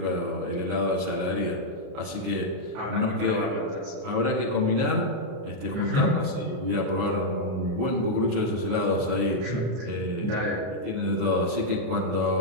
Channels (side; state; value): left; late; 33 ms